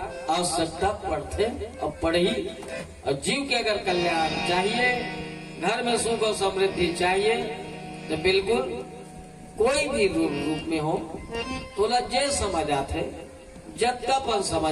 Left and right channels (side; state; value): both; identical; correlation 1.00